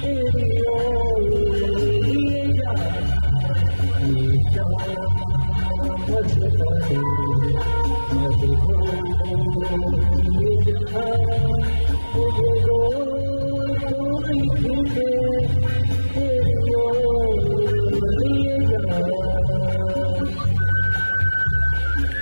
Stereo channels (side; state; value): both; inverted; correlation -1.00